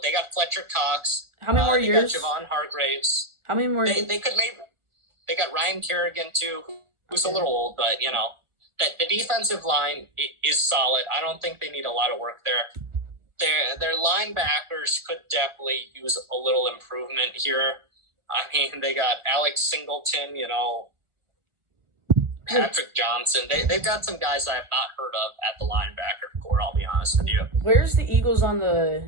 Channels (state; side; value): late; left; 1.4 ms